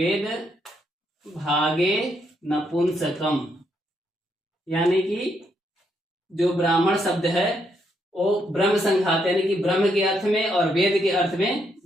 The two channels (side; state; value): both; normal; correlation 0.76